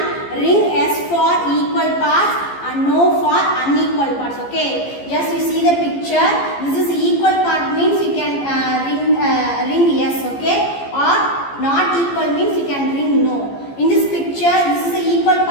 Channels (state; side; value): late; right; 15 ms